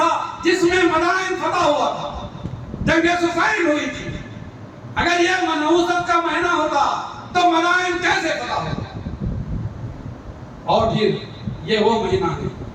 جس میں مدائن فتح ہوا تھا، جنگ صفین ہوئی تھی۔ اگر یہ نحوست کا مہینہ ہوتا تو مدائن کیسے فتح ہوتا؟ اور پھر یہ وہ مہینہ ہے،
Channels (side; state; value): both; identical; correlation 1.00